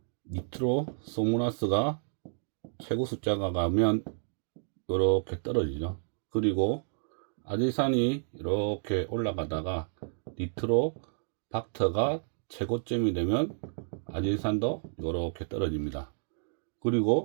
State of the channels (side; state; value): left; silent; digital silence